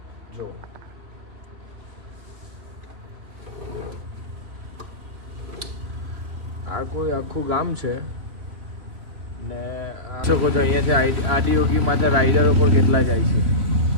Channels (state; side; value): late; left; 3.6 ms